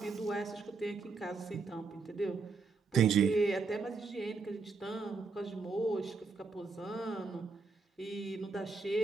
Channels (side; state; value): left; quieter; 4.4 dB